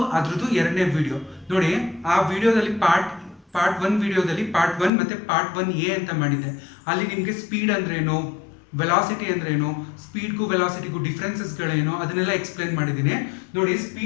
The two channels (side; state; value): right; drops out; at 4.9 s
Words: ಅದ್ರದ್ದು ಎರಡನೇ ವಿಡಿಯೋ ನೋಡಿ. ಆ ವಿಡಿಯೋದಲ್ಲಿ ಪಾರ್ಟ್ 1 ವಿಡಿಯೋದಲ್ಲಿ ಪಾರ್ಟ್ 1 ಮತ್ತು ಪಾರ್ಟ್ 1A ಅಂತ ಮಾಡಿದ್ದೆ. ಅಲ್ಲಿ ನಿಮಗೆ ಸ್ಪೀಡ್ ಅಂದ್ರೇನು, ವೆಲಾಸಿಟಿ ಅಂದ್ರೇನು, ಸ್ಪೀಡ್ಗೂ ವೆಲಾಸಿಟಿಗೂ ಡಿಫ್ರೆನ್ಸಸ್ಗಳೇನು ಅದನ್ನೆಲ್ಲ ಎಕ್ಸ್ಪ್ಲೇನ್ ಮಾಡಿದ್ದೀನಿ ನೋಡಿ.